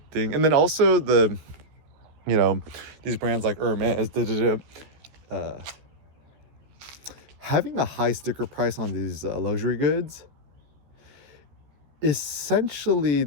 thing. And then also these brands like Hermes, having a high sticker price on these luxury goods, essentially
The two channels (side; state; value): left; late; 14 ms